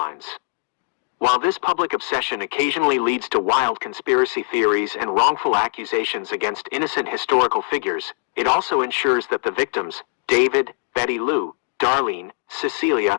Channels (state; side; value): silent; right; digital silence